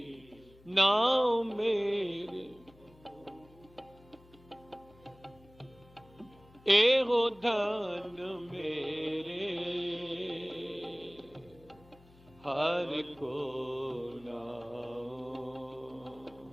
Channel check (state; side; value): noise; left; hum, 25 dB below the sound